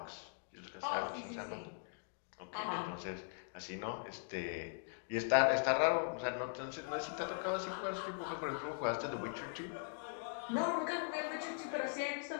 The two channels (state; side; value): silent; right; digital silence